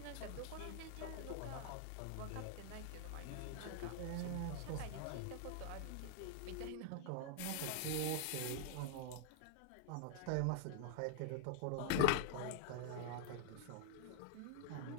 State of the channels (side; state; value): both; different; correlation -0.01